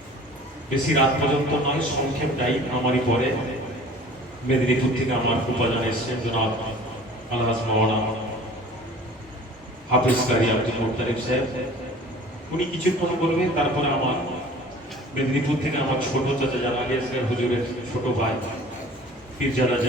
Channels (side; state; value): both; normal; correlation 0.46